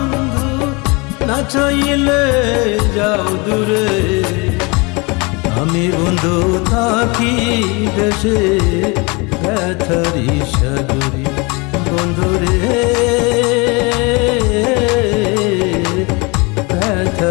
না চাইলে যাও দূরে। আমি বন্ধু থাকি দেশে ব্যথারি সাগরে, বন্ধুরে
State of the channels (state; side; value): quieter; right; 28.3 dB